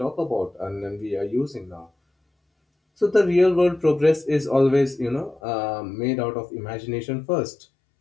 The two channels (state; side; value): drops out; right; at 5.4 s